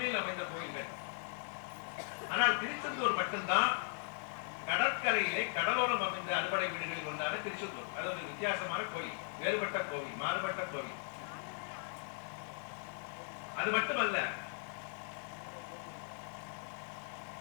அமைந்த கோயில்கள். ஆனால் திருச்செந்தூர் மட்டும்தான் கடற்கரையிலே கடலோரம் அமைந்த அறுபடை வீடுகளில் ஒன்றான திருச்செந்தூர். அது ஒரு வித்தியாசமான கோயில், வேறுபட்ட கோவில், மாறுபட்ட கோவில். அது மட்டுமல்ல,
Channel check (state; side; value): silent; right; 52 dB below the other